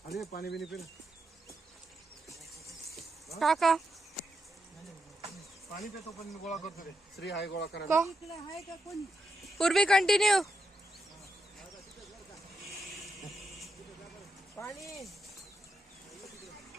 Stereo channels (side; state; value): both; normal; correlation 0.84